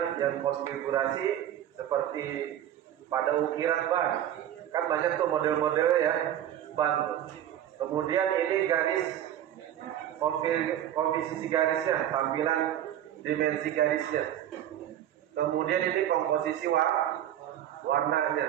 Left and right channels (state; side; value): quieter; left; 11.3 dB